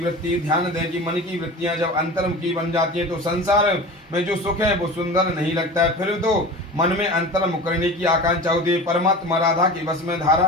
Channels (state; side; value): normal; both; correlation 0.34